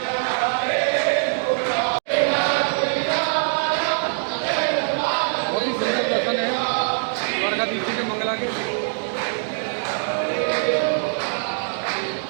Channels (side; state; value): left; silent; digital silence